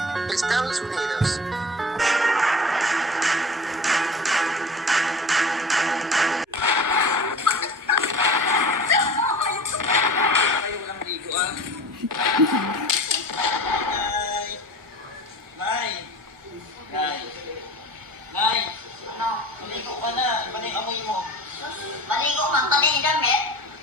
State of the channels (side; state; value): both; normal; correlation 0.37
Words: Estados Unidos. Kayo walang ligo ah. Nay! Nay! Nay! Nay! Ano? Maligo ka na. Iba na yung amoy mo. Maligo man ka din damit.